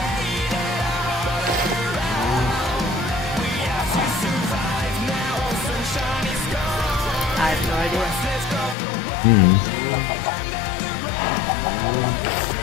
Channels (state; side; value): drops out; right; at 8.8 s